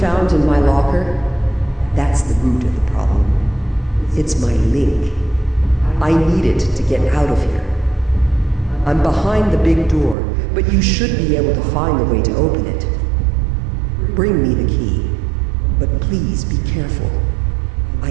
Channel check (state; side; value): drops out; left; at 10.2 s